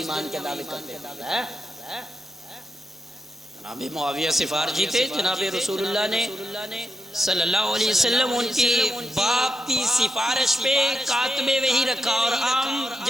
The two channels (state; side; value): normal; both; correlation 0.86